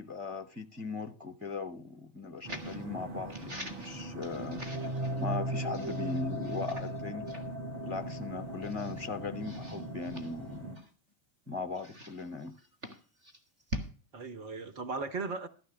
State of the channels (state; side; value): late; left; 3.4 ms